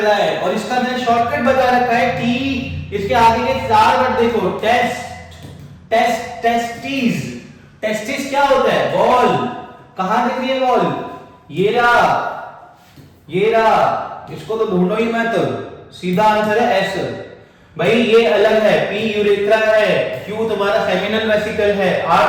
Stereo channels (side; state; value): both; identical; correlation 1.00